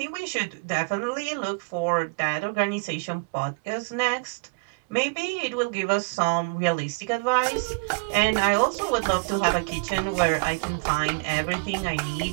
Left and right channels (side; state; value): left; quieter; 33.2 dB